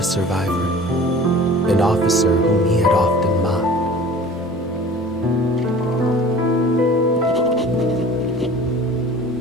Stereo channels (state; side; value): normal; both; correlation 0.44